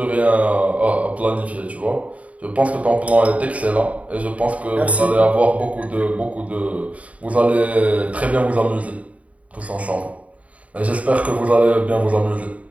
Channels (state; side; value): late; left; 0.067 ms